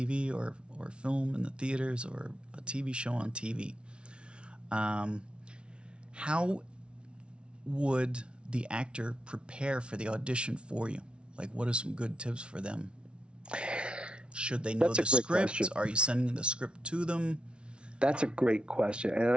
or film in the theaters or a TV show on TV. How would the actor prepare for the audition for you? Like, what are some good tips for them? Should they know the script? Question. Are you sending the script to them? That's a great question. And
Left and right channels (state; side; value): late; left; 0.058 ms